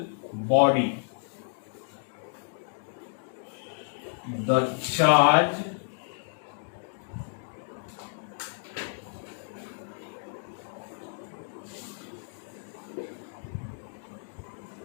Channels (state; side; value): silent; right; digital silence